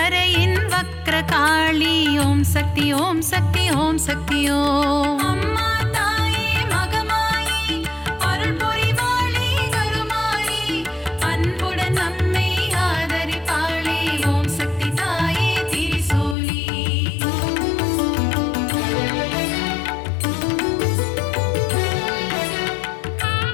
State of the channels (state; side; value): drops out; right; at 16.4 s